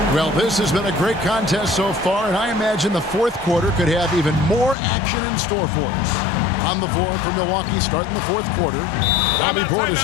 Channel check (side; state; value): right; drops out; at 4.8 s